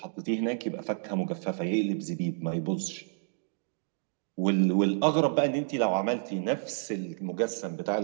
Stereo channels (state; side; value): silent; left; digital silence